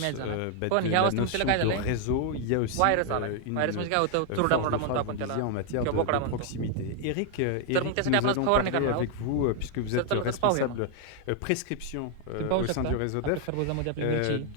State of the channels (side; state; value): both; different; correlation 0.00